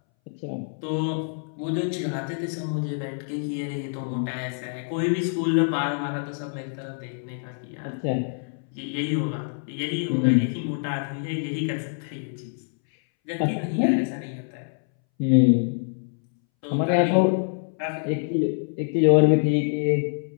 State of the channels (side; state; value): right; silent; 61 dB below the other